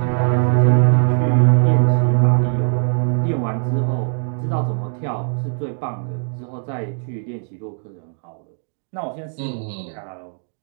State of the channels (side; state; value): left; silent; digital silence